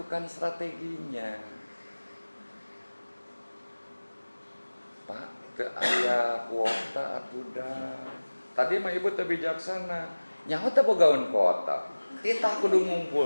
strateginya. Pak, ke aya kuota atuh dah. Tadi mah ibu teu bijaksana. Nyaho teh bogaun kuota. Kita kudu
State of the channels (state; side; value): inverted; both; correlation -1.00